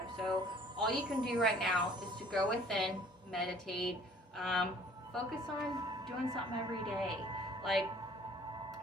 So all you can do right now is to go within, meditate, focus on doing something every day. Like,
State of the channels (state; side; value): normal; both; correlation 0.54